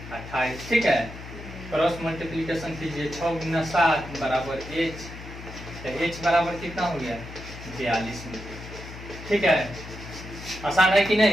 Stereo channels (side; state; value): left; noise; hum, 13 dB below the sound